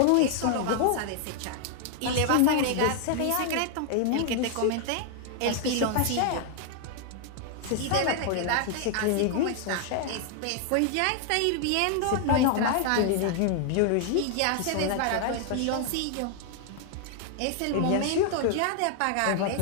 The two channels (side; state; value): both; different; correlation 0.00